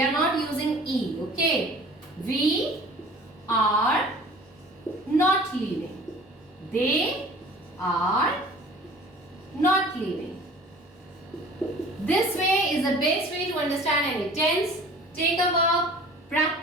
not using E, okay. We are not leaving. They are not leaving. This way is the best way to understand any tense. Take a verb,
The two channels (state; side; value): normal; both; correlation 0.46